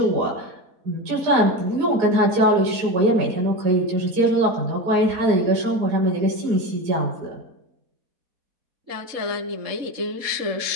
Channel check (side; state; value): left; late; 4.2 ms